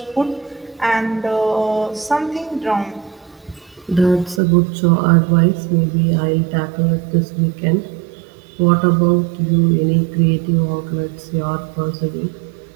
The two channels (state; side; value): drops out; left; at 4.4 s